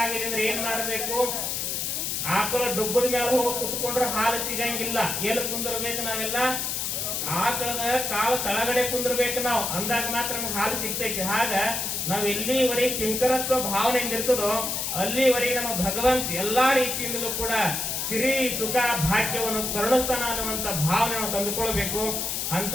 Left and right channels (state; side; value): noise; left; hiss, 1 dB below the sound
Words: ಅಂದ್ರೆ ಏನ್ ಮಾಡ್ಬೇಕು? ಆಕಳ ಡುಬ್ಬದ ಮೇಲೆ ಹೋಗಿ ಕುತ್ಕೊಂಡ್ರೆ ಹಾಲು ಸಿಗಂಗಿಲ್ಲ. ಎಲ್ಲಿ ಕುಂದಿರ್ಬೇಕು? ನಾವೆಲ್ಲ ಆಕಳದ ಕಾಲು ತಳಗಡೆ ಕುಂದಿರ್ಬೇಕು ನಾವು, ಅಂದಾಗ ಮಾತ್ರ ನಮ್ಗೆ ಹಾಲು ಸಿಗ್ತೈತಿ. ಹಾಗ ನಾವ್ ಎಲ್ಲಿವರೆಗೆ ಕಿಂಕರತ್ವ ಭಾವನೆಯಿಂದ ಇರ್ತದೋ ಅಲ್ಲಿವರೆಗೆ ನಮ್ಮ ಭಗವಂತ ಎಲ್ಲಾ ರೀತಿಯಿಂದಲೂ ಕೂಡ ಸಿರಿ ಸುಖ ಭಾಗ್ಯವನ್ನು ಕರುಣಿಸ್ತಾನ ಅನ್ನುವಂತ ಭಾವನೆ ನಾವು ತಂದುಕೊಳ್ಬೇಕು. ಅಂತ